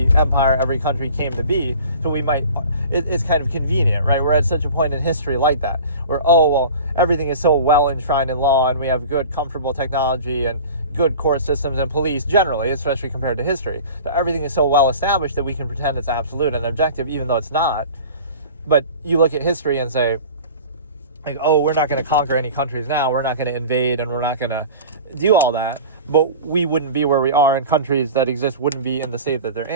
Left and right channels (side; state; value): both; inverted; correlation -0.39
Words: empire, every country came to be. So we might, it's kind of convenient, right? We're at such a point in history like that, where, oh, well, everything is so well enshrined in law, and we have good, comfortable technology and good court systems and police generally, especially compared to history. That everything is so well established that we can pretend it's absolute and objective, even though it's not. But you look at history and say, like, oh, we're not going to conquer any countries now, we're not going to invade, and we're not going to do all that. But we wouldn't be where we are, and countries that exist wouldn't be in the state that they're